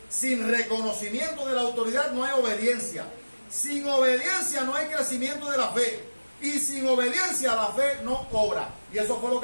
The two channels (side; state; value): both; inverted; correlation -1.00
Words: Sin reconocimiento de la autoridad no hay obediencia. Sin obediencia no hay crecimiento de la fe. Y sin obediencia la fe no obra. Y eso fue lo